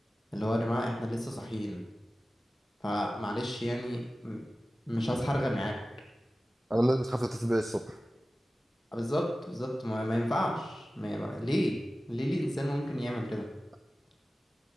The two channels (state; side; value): normal; both; correlation 0.96